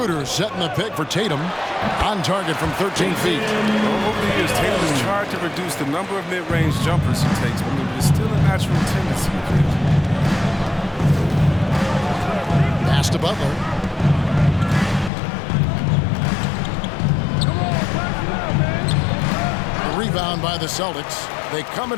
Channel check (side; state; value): right; drops out; at 15.1 s